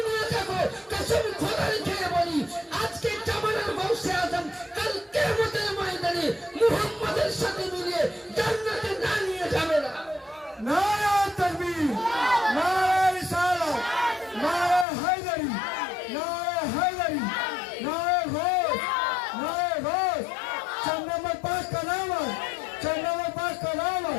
নিয়ে থাকো, কসম খোদার খেয়ে বলি আজকে জামানের গৌসে আজম কাল কিয়ামতের ময়দানে মুহাম্মাদের সাথে মিলিয়ে জান্নাতে না নিয়ে যাবে না। नारा तकबीर, नारा रिसालत, नारा हैदरी, नारा हैदरी, नारा घोष, नारा घोष। 4 नंबर पास का नाम है, 4 नंबर पास का नाम है,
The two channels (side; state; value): right; drops out; at 14.9 s